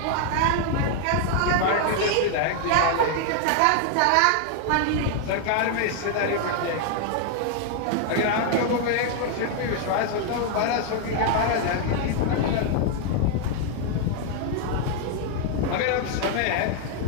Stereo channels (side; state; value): both; different; correlation 0.00